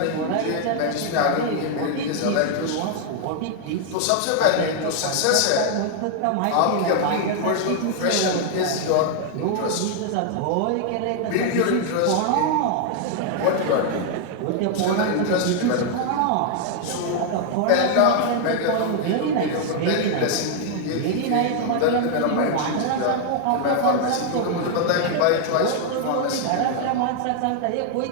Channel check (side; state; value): both; different; correlation 0.00